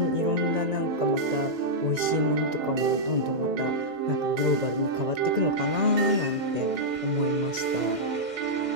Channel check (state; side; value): late; left; 1.9 ms